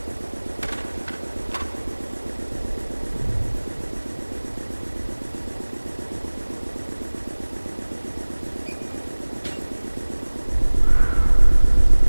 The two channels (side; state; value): both; inverted; correlation -1.00